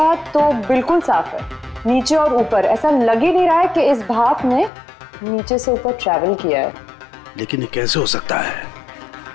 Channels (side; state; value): right; drops out; at 4.7 s